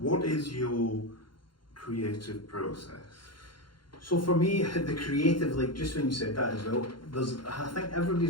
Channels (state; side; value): late; right; 0.72 ms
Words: is your creative process? So for me, the creative, like, just when you said that as well, I think